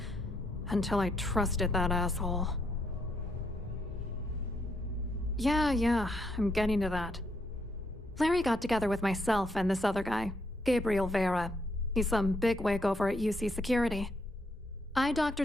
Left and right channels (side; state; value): both; normal; correlation 0.75